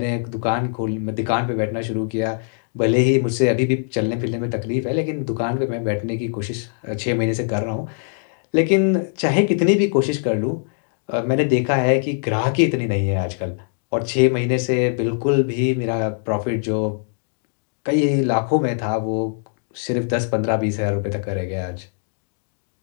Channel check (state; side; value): silent; right; digital silence